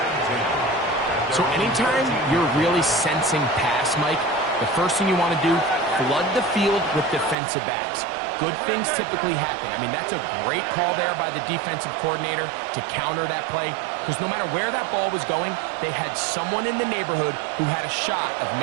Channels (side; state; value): left; drops out; at 7.4 s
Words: So anytime you're really sensing pass, Mike, the first thing you want to do, flood the field with defensive backs. Good things typically happen. I mean, that's a great call there by the defensive coordinator to counter that play, because no matter where that ball was going, they had someone in the neighborhood who had a shot of